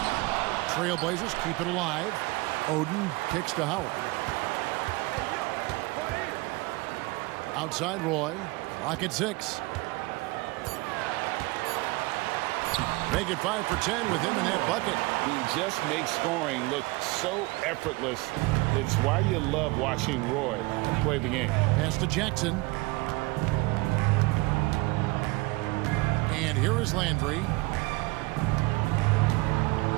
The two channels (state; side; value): quieter; left; 23.6 dB